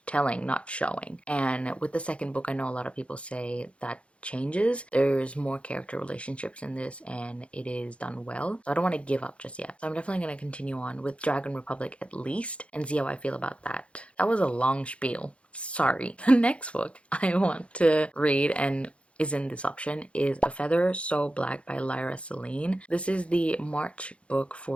telling, not showing. And with the second book, I know a lot of people say that changes. There's more character relationships in this, and it is done well. So I don't want to give up just yet. So I'm definitely going to continue on with Dragon Republic at least and see how I feel about that. That was a long spiel. Sorry. The next book I want to read and is in this option is A Feather So Black by Lyra Celine. This is the March book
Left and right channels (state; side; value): late; right; 0.061 ms